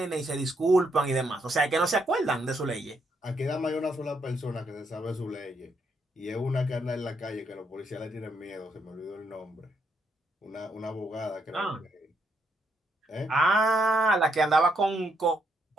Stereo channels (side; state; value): both; normal; correlation 0.76